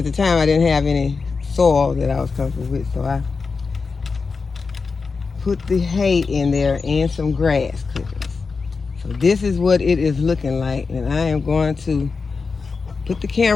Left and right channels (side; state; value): right; quieter; 4.7 dB